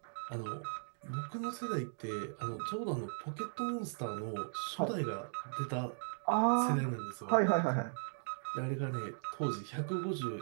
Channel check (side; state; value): left; silent; digital silence